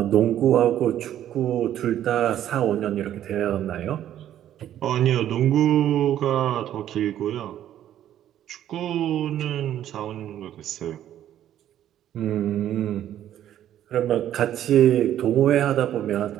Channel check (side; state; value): left; quieter; 11.4 dB